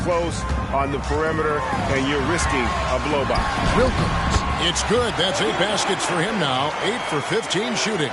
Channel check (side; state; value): both; identical; correlation 1.00